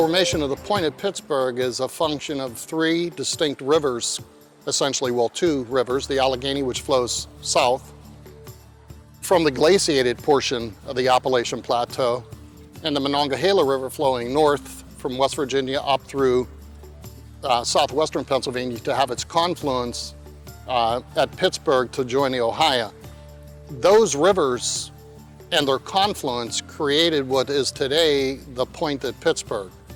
of the point at Pittsburgh is a function of three distinct rivers, essentially, well, two rivers, the Allegheny, which flows south from the glaciated portion of the Appalachian Plateau, and the Monongahela River flowing north from West Virginia up through southwestern Pennsylvania to have its confluence at Pittsburgh to join the Ohio. Those rivers and their confluence created what is today the point at Pittsburgh.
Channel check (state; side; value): identical; both; correlation 1.00